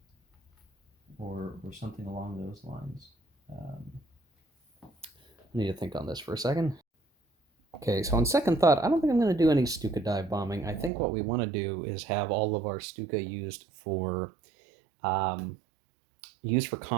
or something along those lines. I need to think on this for a second. Okay, so on second thought, I don't think I'm going to do any Stuka dive bombing. I think what we want to do is have all of our Stuka used for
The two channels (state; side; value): drops out; left; at 10.9 s